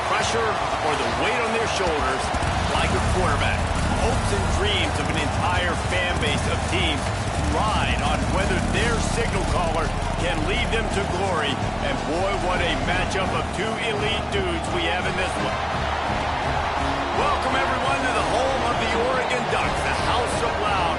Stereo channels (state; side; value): identical; both; correlation 1.00